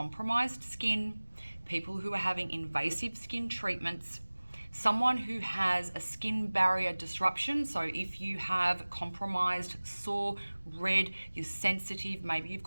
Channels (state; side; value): inverted; both; correlation -1.00